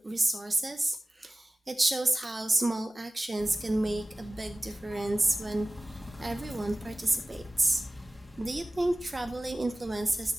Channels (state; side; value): normal; both; correlation 0.97